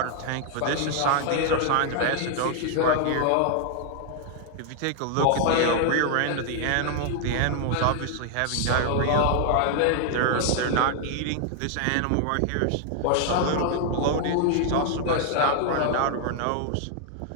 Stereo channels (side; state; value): both; different; correlation 0.00